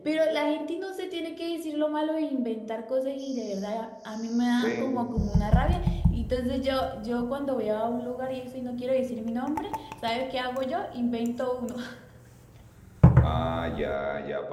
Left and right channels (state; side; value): identical; both; correlation 1.00